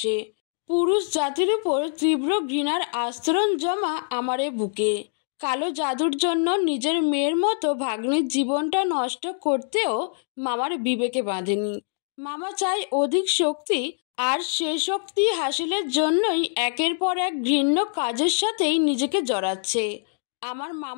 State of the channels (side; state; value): right; silent; digital silence